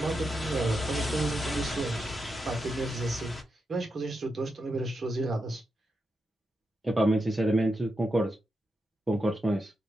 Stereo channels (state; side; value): normal; both; correlation 0.86